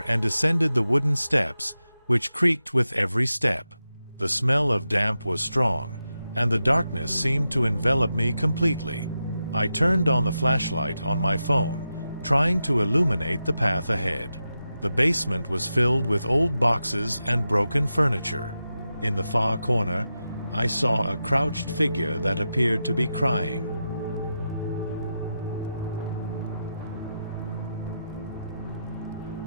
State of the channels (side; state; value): both; inverted; correlation -0.90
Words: and descended the wooden steps, which creaked with every step. The smell of damp was strong, and the darkness seemed to envelop me completely. I turned on the flashlight on my phone, trying to illuminate the path ahead. The basement was filled with old boxes and broken furniture. In the far corner, I saw a crouched figure that appeared to be crying.